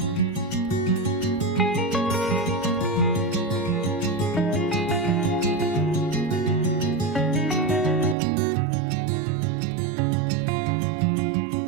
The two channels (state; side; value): drops out; left; at 8.2 s